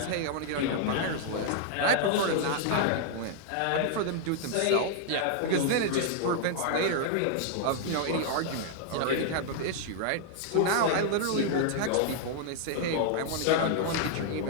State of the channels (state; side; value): different; both; correlation 0.00